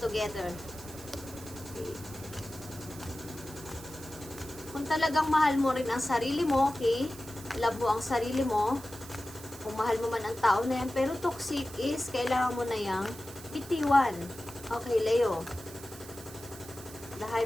Okay. Kung talagang mahal mo rin ang sarili mo, okay? Love mo ang sarili mo. Kung mahal mo man ang tao na yan, pero toxic is, kailangan mo na yang bitiwan. Okay, Leo. The High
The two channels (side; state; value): right; noise; hiss, 16 dB below the sound